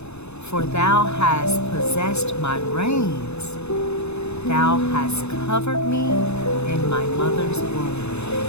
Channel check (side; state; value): right; late; 0.81 ms